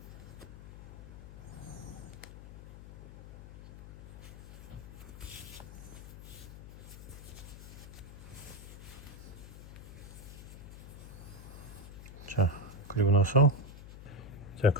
그리고 나서 자,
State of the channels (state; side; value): noise; left; hum, 13 dB below the sound